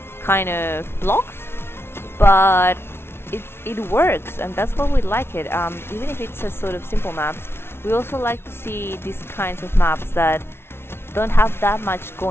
kind of blocks, but it works, and that's why we like it. Even if it's a sort of simple maps, we also like to see these kinds of maps that don't have that much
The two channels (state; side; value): late; right; 0.12 ms